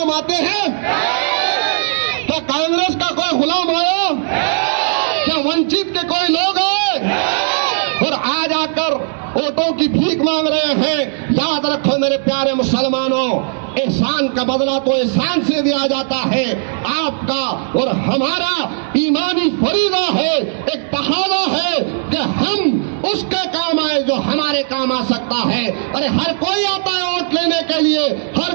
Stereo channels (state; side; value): silent; left; 68 dB below the other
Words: आते हैं? क्या कांग्रेस का कोई गुलाम आया? क्या वंचित के कोई लोग आए और आज आकर वोटों की भीख मांग रहे हैं? याद रखो मेरे प्यारे मुसलमानों, एहसान का बदला तो एहसान से दिया जाता है। आपका और हमारा ईमानी फरीदा है, एक तकाज़ा है कि हम उसके काम आए जो हमारे काम आ सकता है। अरे हर कोई आता है वोट लेने के लिए,